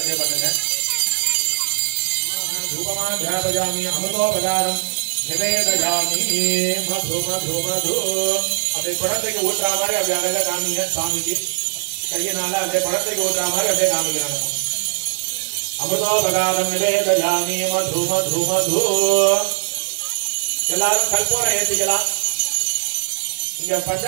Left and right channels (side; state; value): left; silent; 64 dB below the other